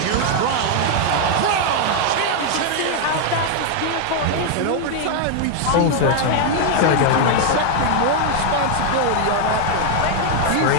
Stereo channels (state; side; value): different; both; correlation 0.00